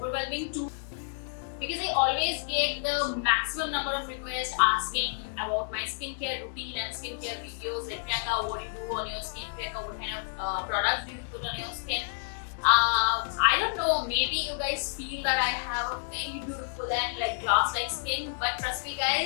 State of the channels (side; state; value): right; silent; digital silence